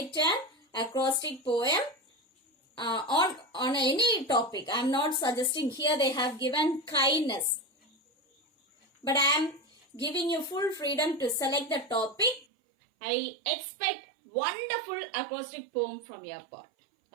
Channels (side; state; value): left; drops out; at 12.5 s